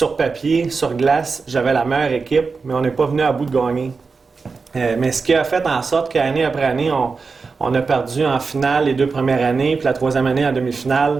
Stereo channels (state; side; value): quieter; left; 4.6 dB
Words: papier, sur glace, j'avais la meilleure équipe, mais on n'est pas venu à bout de gagner. Mais ce qui a fait en sorte qu'année après année, on a perdu en finale les 2 premières années, puis la 3e année en